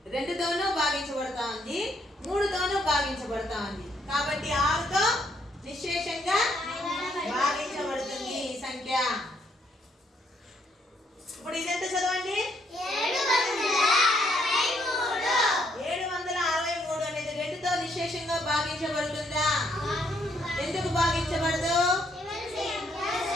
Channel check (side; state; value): both; normal; correlation 0.71